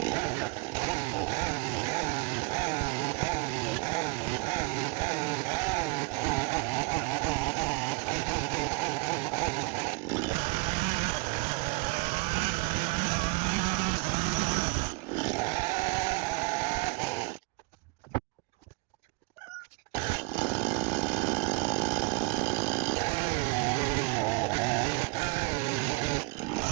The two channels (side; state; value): left; quieter; 27.6 dB